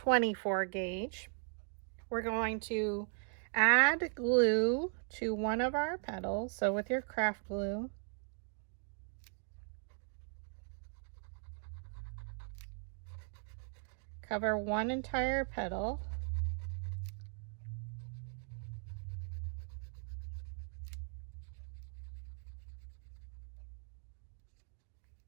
gauge. We're going to add glue to one of our petals. So with your craft glue, cover one entire petal.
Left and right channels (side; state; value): left; silent; 52 dB below the other